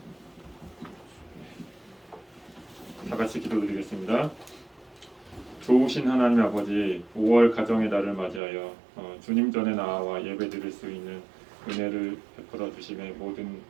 다 같이 기도드리겠습니다. 좋으신 하나님 아버지, 5월 가정의 달을 맞이하여 주님 전에 나와 예배드릴 수 있는 은혜를 베풀어 주심에 모든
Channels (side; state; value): left; drops out; at 8.4 s